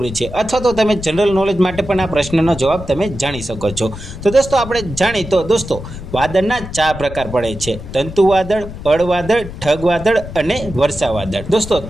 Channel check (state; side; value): noise; left; rumble, 11 dB below the sound